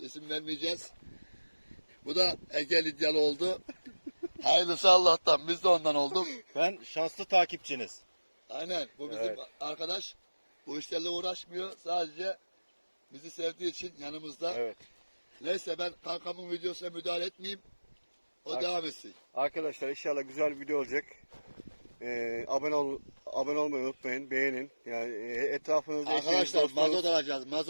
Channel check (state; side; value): inverted; both; correlation -1.00